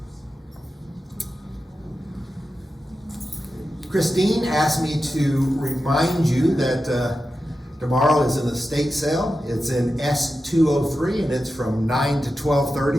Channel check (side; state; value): both; normal; correlation 0.91